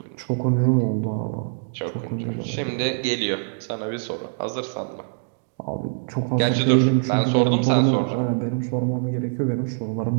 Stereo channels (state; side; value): silent; left; digital silence